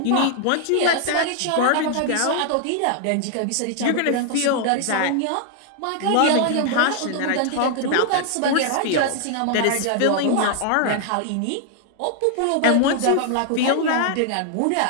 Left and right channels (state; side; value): different; both; correlation 0.00